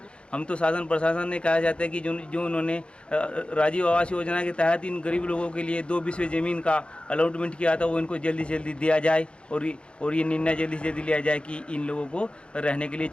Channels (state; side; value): late; right; 0.057 ms